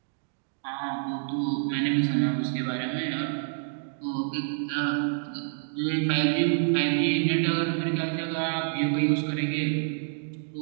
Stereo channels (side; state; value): left; silent; digital silence